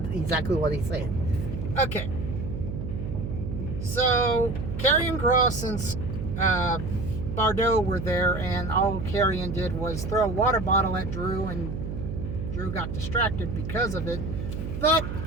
exactly what he said. Okay. So, Karrion Kross and Bardo were there, and all Karrion did was throw a water bottle at Drew, and Drew got distracted because of it. But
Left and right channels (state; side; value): noise; right; hum, 5 dB below the sound